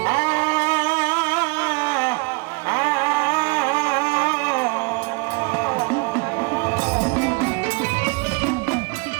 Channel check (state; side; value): quieter; left; 28.8 dB